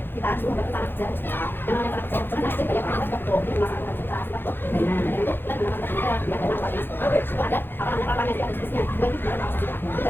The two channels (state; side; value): late; right; 0.10 ms